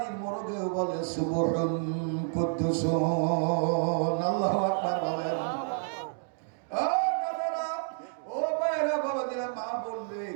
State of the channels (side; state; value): left; silent; digital silence